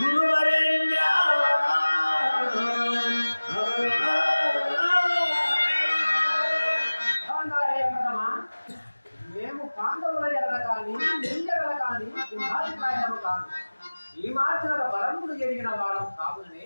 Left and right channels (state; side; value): inverted; both; correlation -1.00